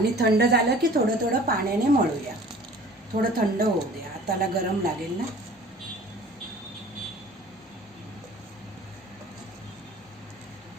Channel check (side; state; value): both; normal; correlation 0.47